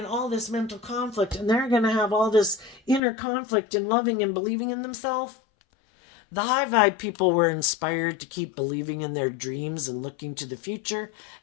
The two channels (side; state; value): right; drops out; at 3.0 s